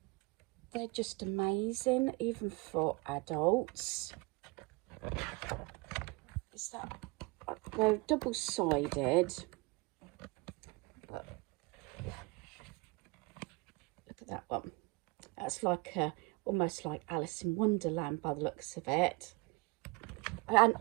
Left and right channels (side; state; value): left; quieter; 26.1 dB